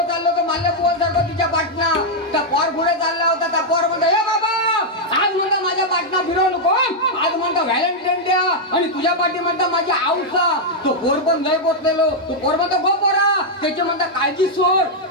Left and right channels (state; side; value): normal; both; correlation -0.03